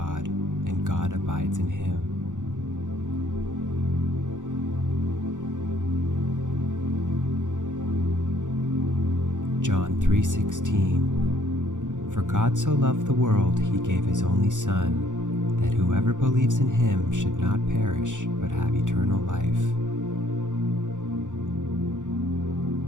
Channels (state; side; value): late; left; 0.86 ms